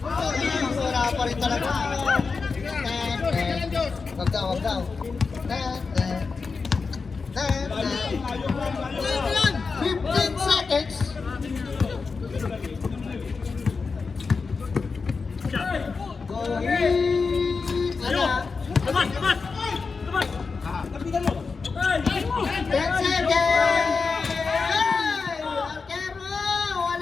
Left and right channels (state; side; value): quieter; right; 4.7 dB